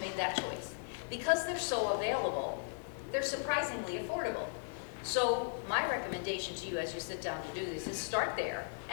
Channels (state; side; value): silent; right; digital silence